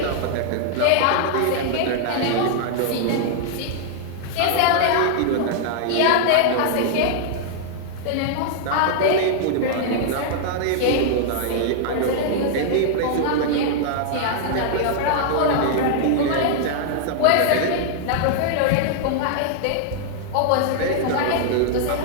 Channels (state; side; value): different; both; correlation -0.01